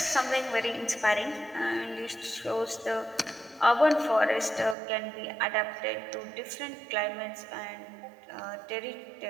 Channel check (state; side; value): drops out; left; at 4.8 s